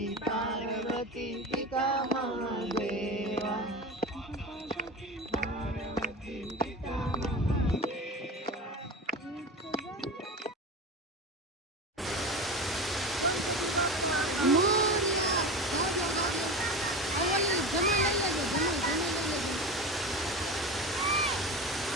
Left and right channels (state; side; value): normal; both; correlation 0.27